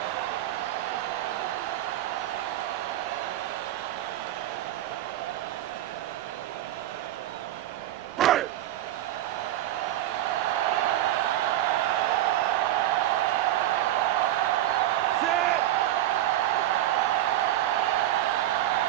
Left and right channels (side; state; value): left; quieter; 13.7 dB